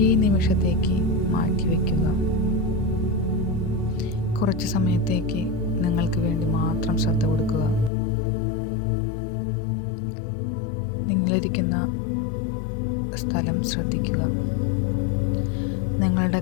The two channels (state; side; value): drops out; right; at 7.9 s